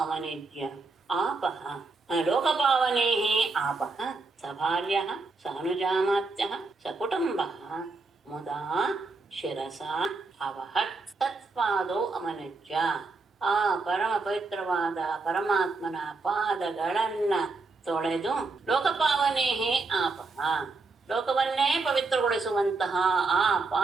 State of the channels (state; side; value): quieter; left; 3.8 dB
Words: ಆಪಃ ಲೋಕಪಾವನೇಃ ಆಪಃ ಸಭಾರ್ಯಃ ಸಾನುಜಾಮಾತ್ಯಃ ಸಕುಟುಂಬಃ ಮುದಾ ಶಿರಸಾ ಅವಹತ್. ತತ್ಪಾದೌ ಅವನಿಜ್ಯ ಆ ಪರಮ ಪವಿತ್ರವಾದ ಪರಮಾತ್ಮನ ಪಾದಗಳನ್ನ ತೊಳೆದು ಲೋಕಪಾವನೇಹೇ ಆಪಃ ಲೋಕವನ್ನೇ ಪವಿತ್ರಗೊಳಿಸುವಂತಹ ಆ